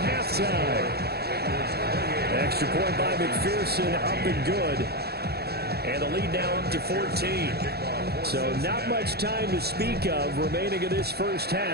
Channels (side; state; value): left; late; 0.46 ms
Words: halftime. Extra point by McPherson, up and good. And the lead now up to 14. So not much time to speak of remaining in this first